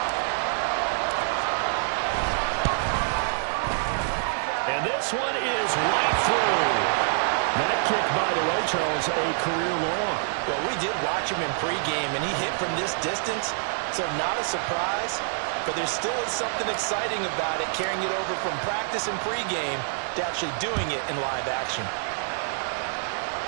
And this one is right through. That kick, by the way, Charles, a career long. Well, we did watch him in pregame, and he hit from this distance, so not a surprise. But there still is something exciting about it, carrying it over from practice and pregame to actually doing it in live action.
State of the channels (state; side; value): silent; left; digital silence